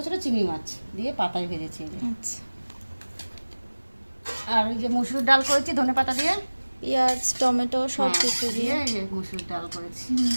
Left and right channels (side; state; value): both; inverted; correlation -1.00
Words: ছোটো চিংড়ি মাছ দিয়ে পাতায় ভেজেছি এই যে। আচ্ছা। আর ওই যে মসুর ডাল করেছি ধনেপাতা দিয়ে, পেঁয়াজ টমেটো সব হ্যাঁ, কিছু দিয়ে। এই যে মসুর ডাল করেছি।